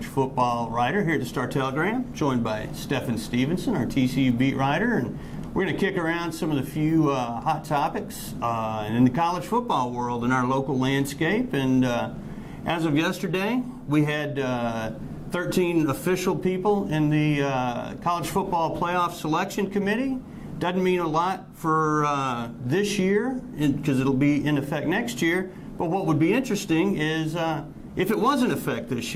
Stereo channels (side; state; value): both; identical; correlation 1.00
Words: football writer here at the Star-Telegram, joined by Stephen Stevenson, our TCU beat writer, and we're going to kick around some of the few hot topics in the college football world in our local landscape. And as of yesterday, we had 13 official people in the College Football Playoff Selection Committee. Doesn't mean a lot for this year because it'll be in effect next year. But what would be interesting is if it was in effect this